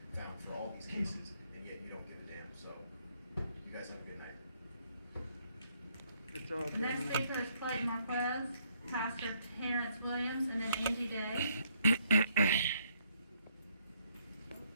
found for all these cases, and yet you don't give a damn. So you guys have a good night. The next speaker is Clayton Marquez, Pastor Terrence Williams, and then Angie Day.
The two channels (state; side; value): inverted; both; correlation -0.70